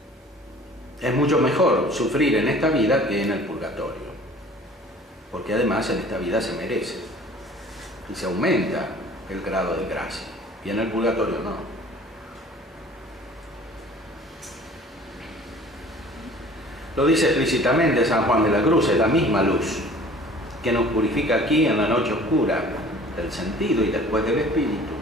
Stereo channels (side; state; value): both; normal; correlation 0.48